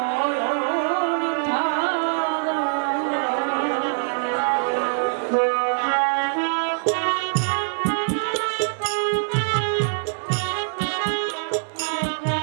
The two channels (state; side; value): silent; left; digital silence